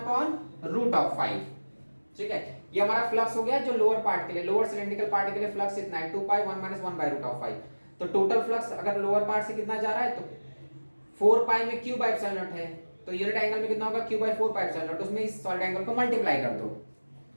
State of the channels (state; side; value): inverted; both; correlation -1.00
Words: root of 5। ठीक है, ये हमारा फ्लक्स हो गया जो लोअर पार्ट के लिए, लोअर सिलेंड्रिकल पार्ट के लिए फ्लक्स इतना है 2 pi 1 minus 1 by root of 5। तो टोटल फ्लक्स अगर लोअर पार्ट से कितना जा रहा है तो 4 पाई में q बाय एप्सिलॉन नॉट है, तो यूनिट एंगल में कितना होगा q by 4 pi epsilon naught, उसमें इस सॉलिड एंगल को मल्टीप्लाई कर दो।